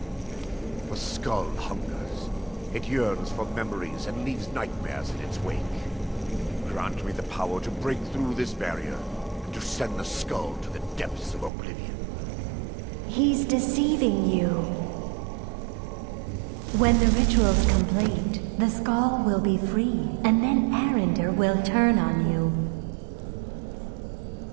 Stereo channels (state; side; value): drops out; left; at 11.5 s